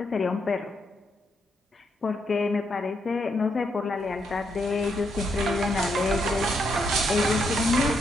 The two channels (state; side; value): normal; both; correlation 0.78